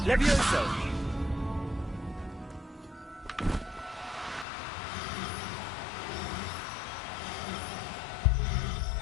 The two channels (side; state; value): right; drops out; at 4.5 s